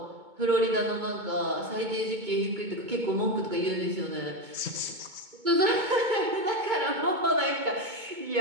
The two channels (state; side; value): late; left; 2.2 ms